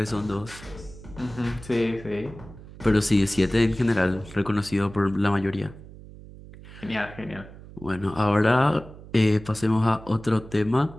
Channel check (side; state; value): right; noise; hum, 17 dB below the sound